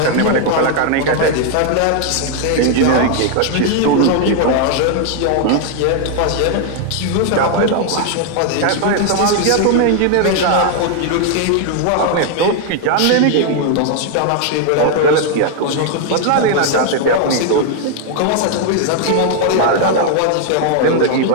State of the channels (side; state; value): both; different; correlation 0.00